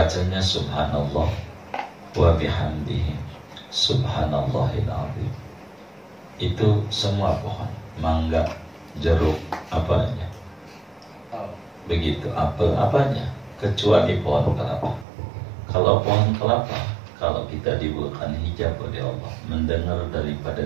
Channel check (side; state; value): left; drops out; at 15.1 s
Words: subhanallah wa bihamdihi subhanallahil azim. Itu semua pohon, mangga, jeruk, apanya begitu, apel apanya, kecuali pohon kelapa. Kalau pohon kelapa, kalau kita dibukakan hijab oleh Allah, mendengar daripada